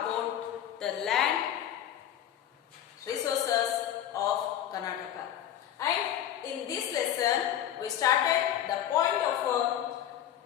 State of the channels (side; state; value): right; quieter; 10.9 dB